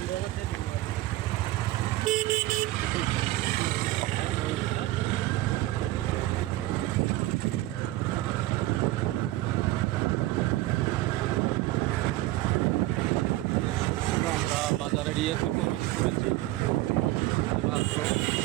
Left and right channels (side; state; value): left; quieter; 17.2 dB